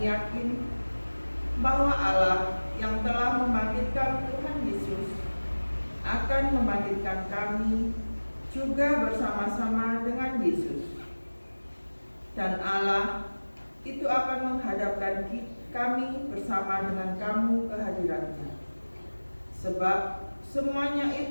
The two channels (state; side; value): inverted; both; correlation -1.00